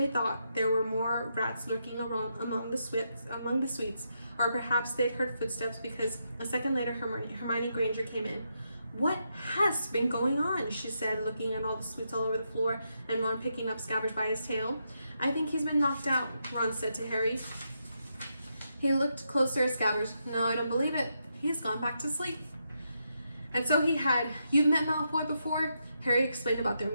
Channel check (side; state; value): both; inverted; correlation -0.82